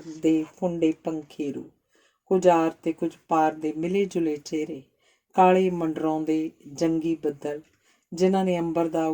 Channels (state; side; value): identical; both; correlation 1.00